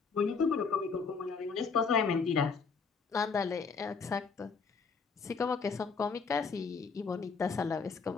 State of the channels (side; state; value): right; quieter; 5.2 dB